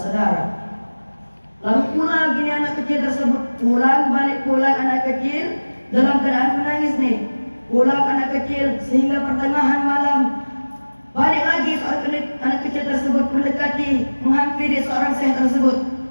Lalu pulang gini anak kecil tersebut, pulang anak kecil dalam keadaan menangis nih. Pulang anak kecil sehingga pertengahan malam balik lagi seorang anak kecil tersebut mendekati, menghampiri seorang syekh tersebut.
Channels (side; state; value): both; inverted; correlation -1.00